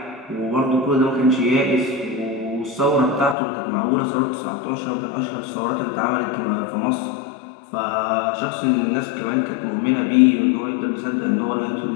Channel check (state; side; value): drops out; right; at 3.4 s